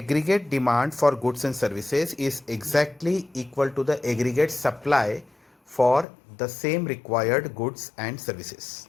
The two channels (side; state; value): right; drops out; at 6.1 s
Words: demand for goods and services is exactly equal to the aggregate supply for the same required goods and services.